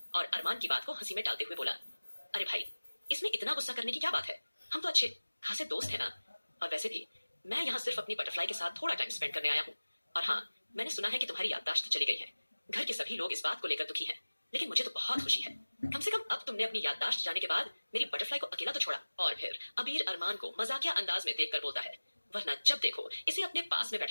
और अरमान की बात को हंसी में टालते हुए बोला, अरे भाई, इसमें इतना गुस्सा करने की क्या बात है, हम तो अच्छे खासे दोस्त हैं ना। और वैसे भी मैं यहाँ सिर्फ अपनी बटरफ्लाई के साथ थोड़ा टाइम स्पेंड करने आया हूँ। और हाँ, मैंने सुना है कि तुम्हारी याददाश्त चली गई है। घर के सभी लोग इस बात को लेकर दुखी हैं, लेकिन मुझे तो बहुत खुशी है। कम से कम अब तुमने अपनी याददाश्त जाने के बाद मेरी बटरफ्लाई को अकेला तो छोड़ा। और फिर अबीर अरमान को मजाकिया अंदाज में देखकर बोलता है, वरना जब देखो इसे अपने पास में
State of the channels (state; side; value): inverted; both; correlation -1.00